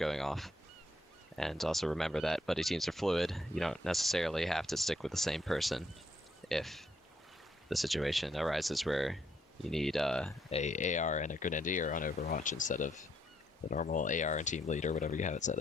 off. And also remember that buddy teams are fluid. You don't necessarily have to stick with the same person if the situation arises where you need a AR and a Grenadier on Overwatch instead of the normal AR and team lead or whatever you have it set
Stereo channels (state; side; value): normal; both; correlation 0.72